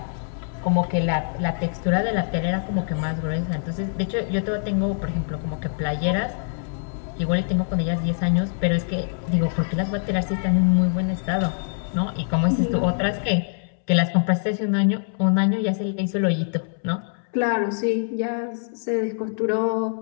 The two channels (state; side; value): silent; right; 63 dB below the other